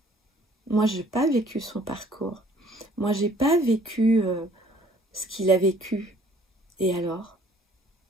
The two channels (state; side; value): normal; both; correlation 0.58